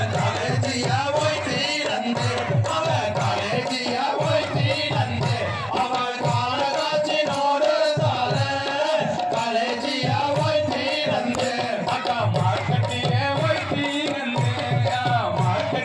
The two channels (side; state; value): both; identical; correlation 1.00